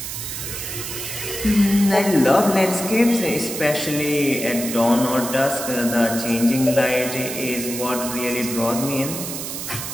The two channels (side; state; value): right; noise; hiss, 6 dB below the sound